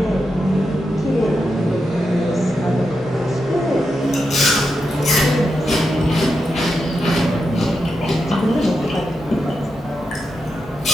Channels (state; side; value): normal; both; correlation 0.86